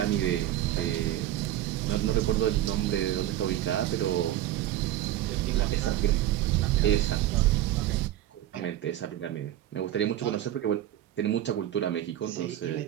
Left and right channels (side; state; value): left; quieter; 13.1 dB